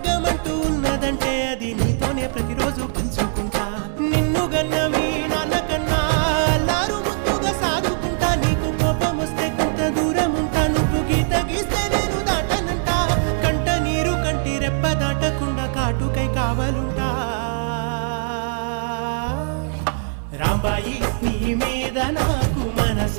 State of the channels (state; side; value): silent; left; digital silence